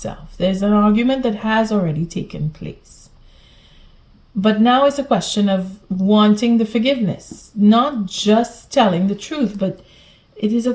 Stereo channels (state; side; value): identical; both; correlation 1.00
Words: There's an argument that has already taken place. But now it's a question of wanting the forgiveness, not just telling the truth, but it is a